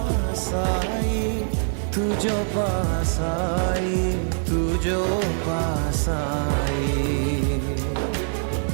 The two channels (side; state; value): left; silent; digital silence